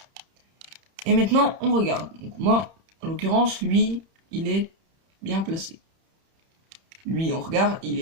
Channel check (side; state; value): left; late; 31 ms